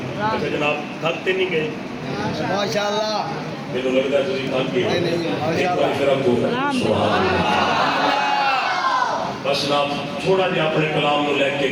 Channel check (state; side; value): identical; both; correlation 1.00